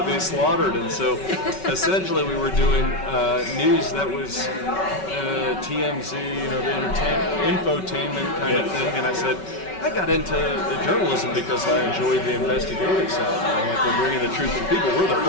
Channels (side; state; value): right; late; 5.3 ms